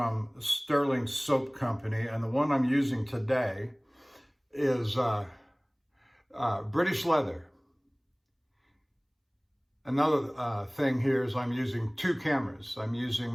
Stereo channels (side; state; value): both; identical; correlation 1.00